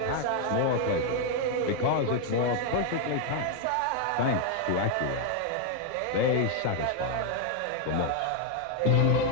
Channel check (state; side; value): different; both; correlation 0.00